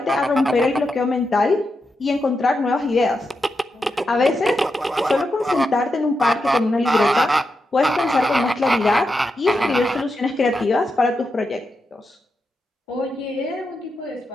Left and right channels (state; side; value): normal; both; correlation 0.86